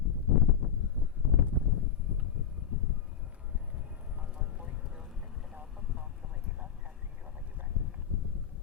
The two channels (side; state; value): right; quieter; 8.2 dB